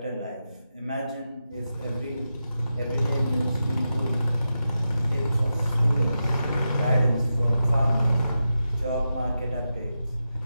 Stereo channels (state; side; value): inverted; both; correlation -0.90